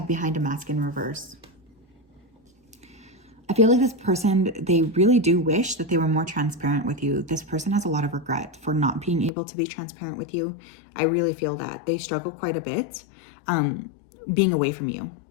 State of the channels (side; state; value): right; drops out; at 9.3 s